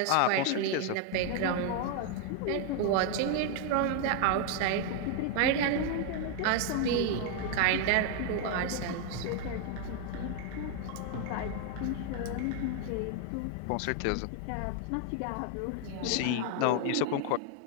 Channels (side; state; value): both; different; correlation 0.00